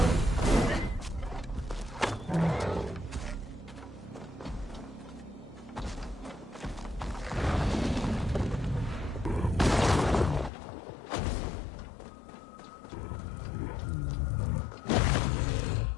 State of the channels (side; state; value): right; drops out; at 10.5 s